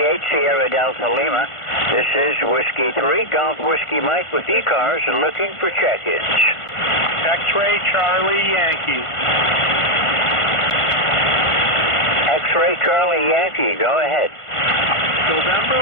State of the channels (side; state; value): right; late; 1.5 ms